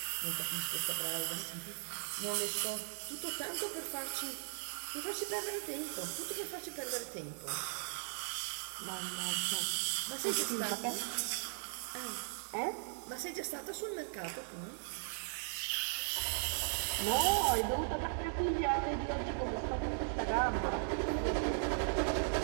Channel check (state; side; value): silent; left; digital silence